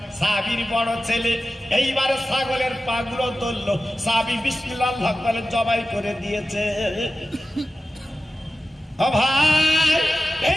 সাবির বড় ছেলে এইবারে ছাগলের পাগুলো ধরলো, সাবি বিসমিল্লাহ বলে জবাই করে দিয়েছে। ও ভাই,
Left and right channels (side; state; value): both; normal; correlation 0.94